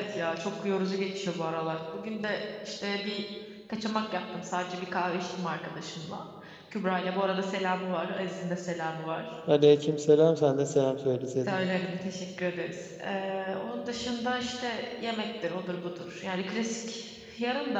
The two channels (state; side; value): identical; both; correlation 1.00